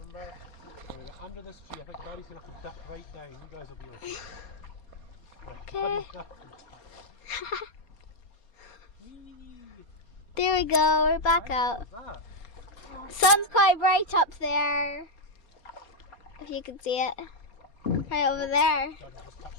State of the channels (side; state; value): right; late; 4.3 ms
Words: We're going to get under this tree. I think Daddy's going to have to dip right down. You guys will be okay. Right, Okay. There we go, we're back out. that? Sun's quite bright up there. If you can see it. Right over there.